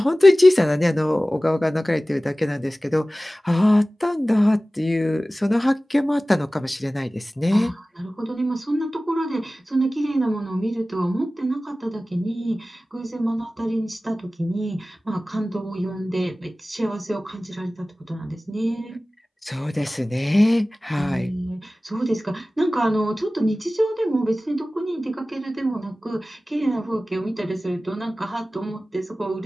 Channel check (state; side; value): normal; both; correlation 0.97